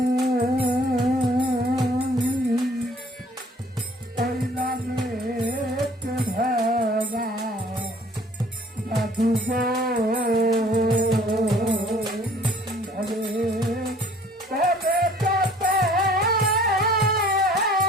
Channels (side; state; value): both; normal; correlation 0.54